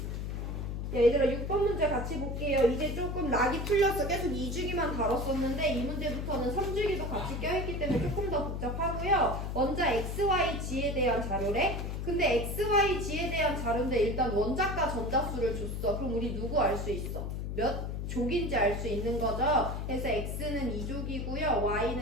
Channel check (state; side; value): noise; left; hum, 4 dB below the sound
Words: 얘들아 6번 문제 같이 볼게요. 이제 조금 락이 풀려서 계속 2주기만 다뤘었는데 이 문제부터는 3주기도 같이 껴있기 때문에 조금 더 복잡하고요. 먼저 XYG에 대한 자료래. 근데 XYG에 대한 자료인데 일단 원자과 전자수를 줬어. 그럼 우리 누구 알 수 있어? 몇 족인지 알 수 있는 거죠. 그래서 X는 2족이고요.